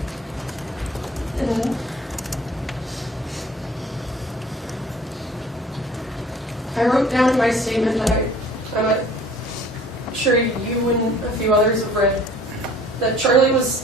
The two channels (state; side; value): normal; both; correlation 0.50